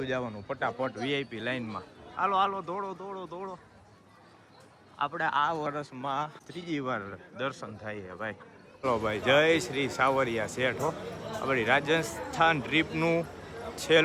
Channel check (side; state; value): both; identical; correlation 1.00